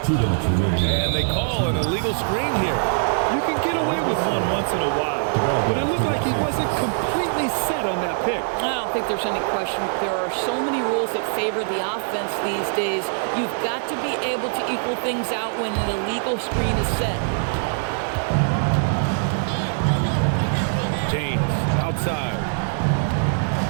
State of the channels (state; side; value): silent; left; digital silence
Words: And they call an illegal screen here. You can get away with one once in a while, but it looked like he wasn't completely set on that pick. I don't think there's any question. There are so many rules that favor the offense these days. You've got to be able to equal things out when an illegal screen is set. James outside.